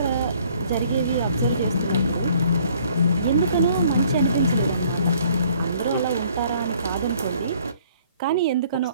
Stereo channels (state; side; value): inverted; both; correlation -0.60